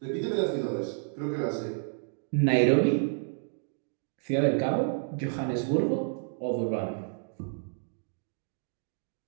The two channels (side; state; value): left; silent; digital silence